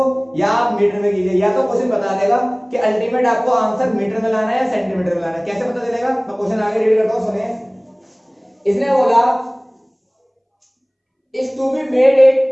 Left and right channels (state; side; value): identical; both; correlation 1.00